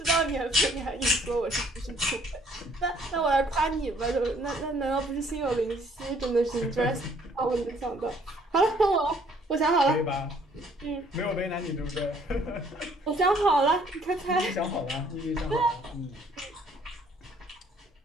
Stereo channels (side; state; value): both; normal; correlation 0.62